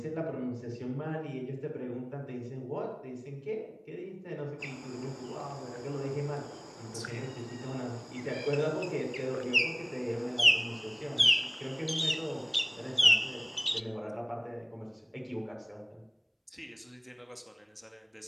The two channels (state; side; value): identical; both; correlation 1.00